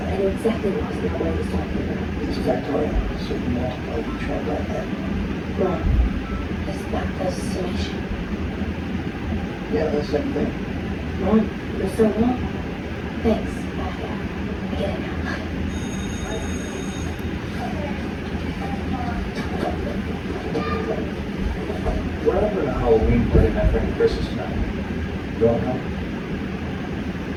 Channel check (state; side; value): identical; both; correlation 1.00